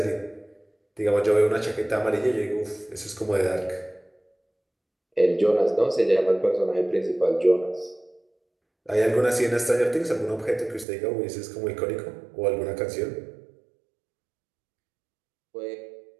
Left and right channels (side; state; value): left; drops out; at 10.9 s